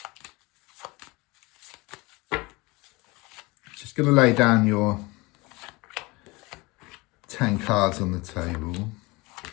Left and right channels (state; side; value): quieter; right; 24.1 dB